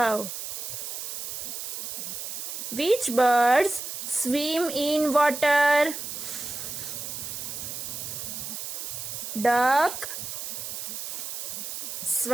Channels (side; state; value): right; noise; hiss, 6 dB below the sound